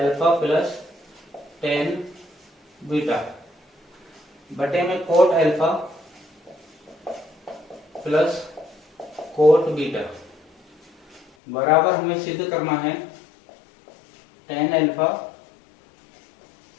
plus tan beta बटे में coat alpha plus coat beta बराबर हमें सिद्ध करना है tan अल्फा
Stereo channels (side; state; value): right; drops out; at 11.3 s